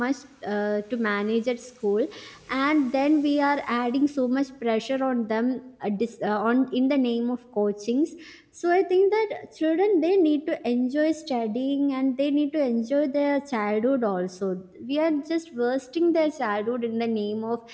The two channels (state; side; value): identical; both; correlation 1.00